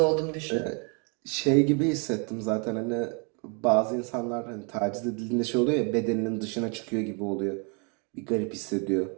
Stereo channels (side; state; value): left; quieter; 36.7 dB